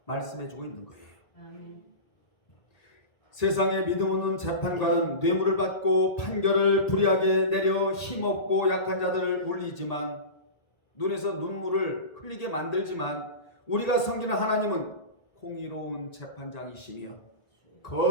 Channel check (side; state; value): right; late; 1.8 ms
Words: 말씀해주고 있는 거예요. 아멘. 세상에 믿음 없는 재판관은 뇌물을 받고 판결을 불이하게 내려 힘없고 약한 자들을 울리지만, 눈에서 눈물을 흘리게 만들지만, 우리가 섬기는 하나님은 공의로운 재판장이시며